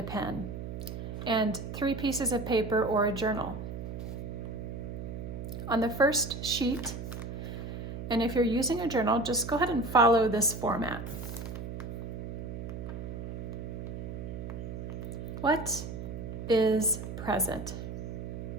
pen, and 3 pieces of paper or a journal. On the first sheet, and if you're using a journal, just go ahead and follow this format. What is present?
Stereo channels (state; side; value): noise; right; hum, 7 dB below the sound